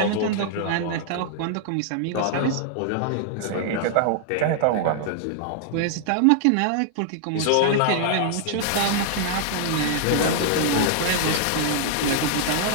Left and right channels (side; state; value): both; different; correlation -0.01